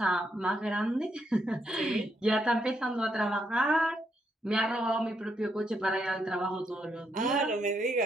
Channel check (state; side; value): normal; both; correlation 0.78